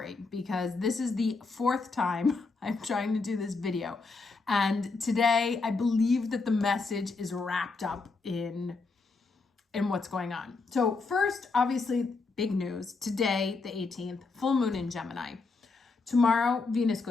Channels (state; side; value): quieter; right; 4.0 dB